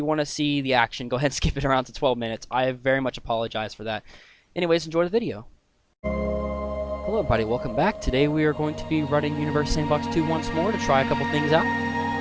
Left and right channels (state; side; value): identical; both; correlation 1.00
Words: want to see the action, go ahead and skip it around to 12 minutes. I very much apologize for that. Anyways, enjoy the video. Hello everybody, welcome back. Today we are going to be running Universe Sandbox 2 once more to try a couple things out.